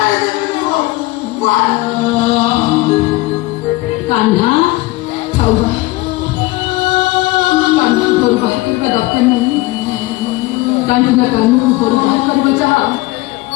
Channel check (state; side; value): quieter; right; 20.1 dB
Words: कान्हा ଥାଉ କାନ୍ହା ଘରୁ ବାହାର କରିବା ଦରକାର ନାହିଁ କାହିଁକି ନା କାହ୍ନୁ ଘରୁ ବାହାର କରିବା ଯାହା